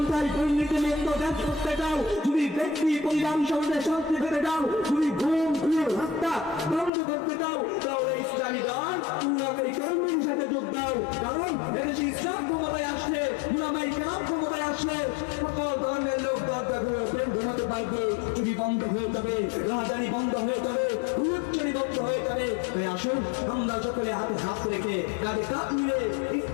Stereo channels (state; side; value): drops out; right; at 6.9 s